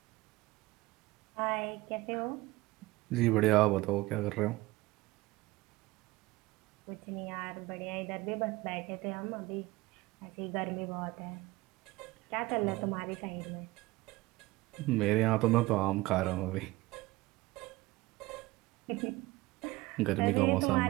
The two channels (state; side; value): quieter; left; 20.3 dB